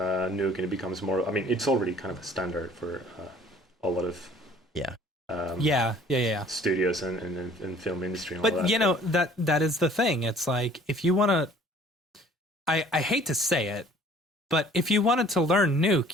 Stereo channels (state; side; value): normal; both; correlation 0.54